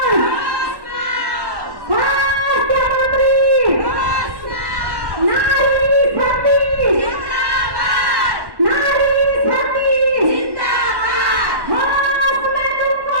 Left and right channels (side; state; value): left; late; 1.1 ms